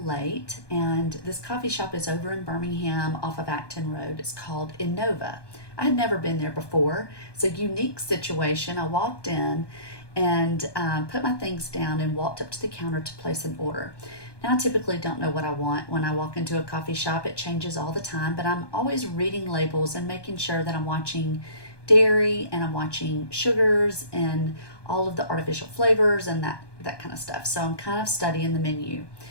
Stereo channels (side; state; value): right; late; 1.2 ms